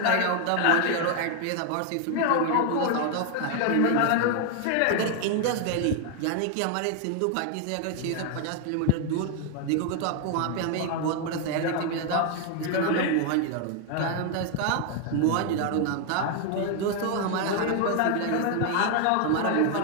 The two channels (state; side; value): different; both; correlation 0.00